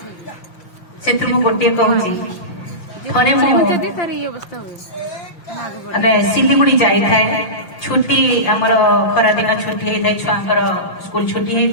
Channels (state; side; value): late; right; 5.8 ms